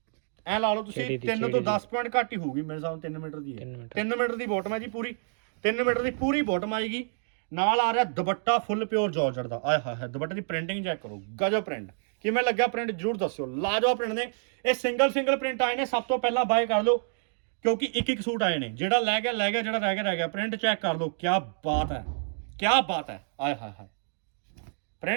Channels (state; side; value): silent; left; digital silence